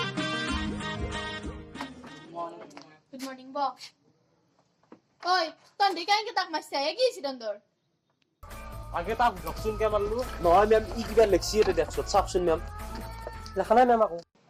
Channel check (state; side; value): identical; both; correlation 1.00